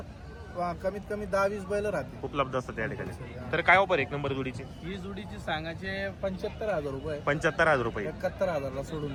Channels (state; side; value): identical; both; correlation 1.00